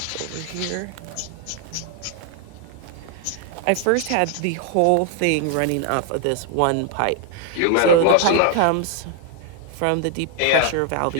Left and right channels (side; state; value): both; different; correlation 0.00